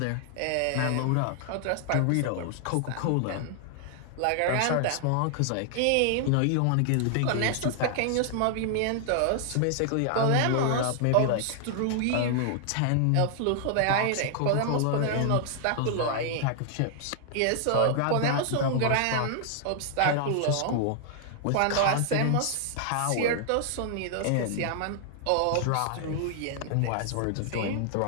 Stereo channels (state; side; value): different; both; correlation 0.00